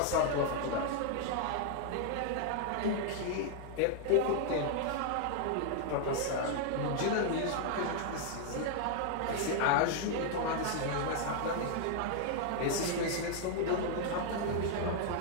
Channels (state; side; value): different; both; correlation 0.00